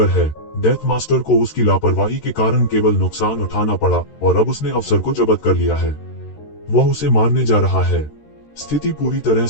है। डेथ मास्टर को उसकी लापरवाही के कारण केवल नुकसान उठाना पड़ा और अब उसने अवसर को जब्त कर लिया है। वह उसे मारने जा रहा है। स्थिति पूरी तरह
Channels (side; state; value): right; late; 13 ms